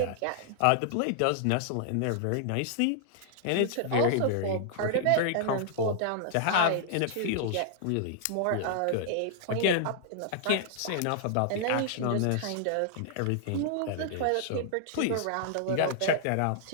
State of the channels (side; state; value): both; different; correlation -0.01